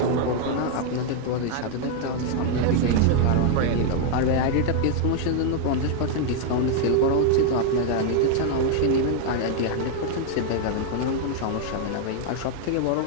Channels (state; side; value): different; both; correlation 0.00